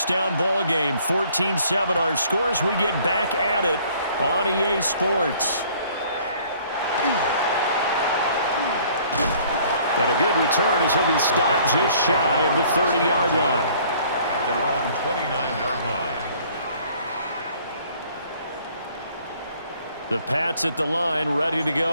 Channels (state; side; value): inverted; both; correlation -0.57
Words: ball game, 14-7 our scores. We get back at it on EA Sports. And a good return as he'll be stopped just shy of the 30-yard line. At their own 29-yard line. The Pats at the line, ready to